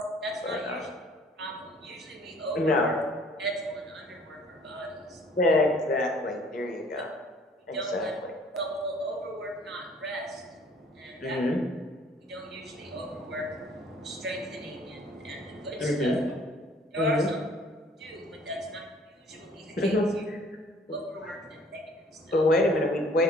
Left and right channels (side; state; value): both; normal; correlation 0.56